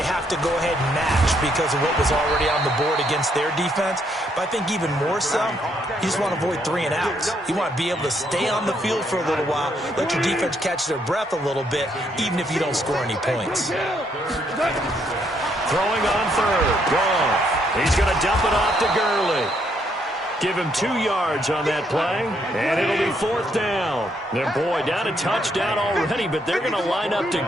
have to go ahead and match because of what was already on the board against their defense. But I think even more so, you just want to avoid 3 and outs. You want to be able to stay on the field for a little while, let your defense catch their breath a little bit, even if you don't score any points. Throwing on third, Goff. He's going to dump it off to Gurley. Give him 2 yards on that play, and it'll be fourth down. And boy, down a touchdown already, but they're going to line up to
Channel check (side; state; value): both; normal; correlation 0.73